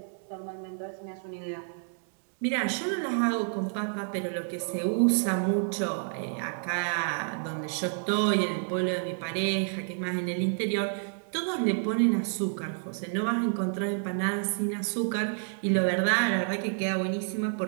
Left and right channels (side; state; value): left; silent; 58 dB below the other